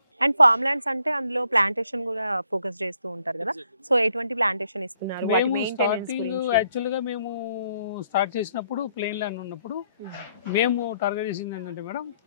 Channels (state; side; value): inverted; both; correlation -0.70